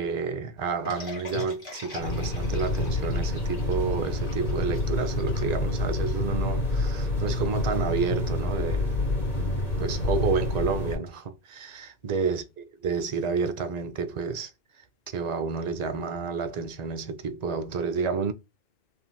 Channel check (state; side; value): late; right; 1.9 ms